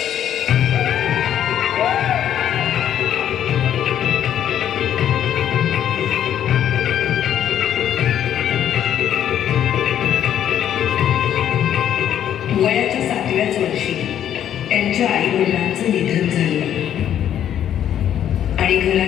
वयाच्या 7व्याच वर्षी त्यांच्या आई वडिलांचं निधन झालं आणि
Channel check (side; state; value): right; quieter; 10.3 dB